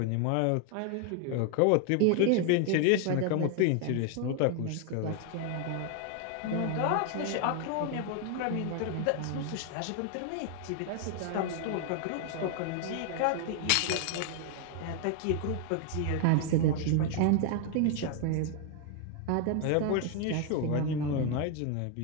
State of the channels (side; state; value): both; different; correlation 0.01